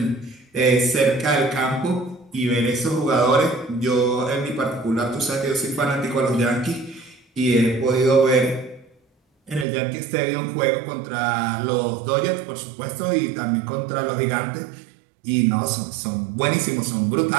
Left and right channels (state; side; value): drops out; left; at 9.7 s